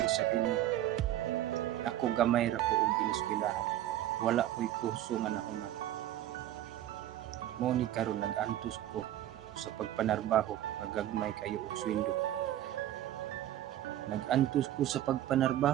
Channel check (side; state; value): left; quieter; 12.9 dB